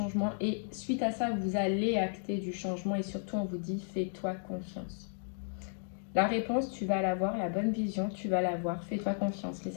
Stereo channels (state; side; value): silent; right; digital silence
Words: et suite à ça, vous allez acter du changement et surtout, on vous dit, fais-toi confiance. La réponse, tu vas l'avoir, la bonne vision, tu vas l'avoir. Fais-toi confiance, les